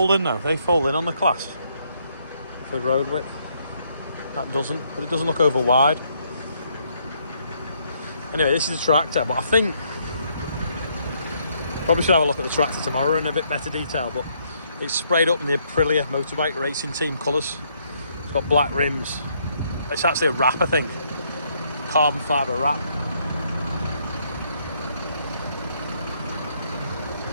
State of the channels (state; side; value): inverted; both; correlation -0.71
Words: in though. They fold in on the class for road width. That doesn't, but it doesn't look over wide. Anyway, this is a tractor, but I think probably should have a look at the tractor tomorrow in a bit better detail. But it's sprayed up in the Aprilia motorbike racing team colours. It's got black rims. It's actually a wrap, I think. Carbon fibre wrap.